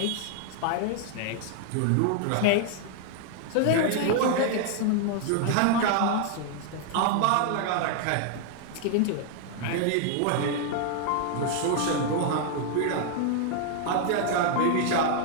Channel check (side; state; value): both; different; correlation 0.00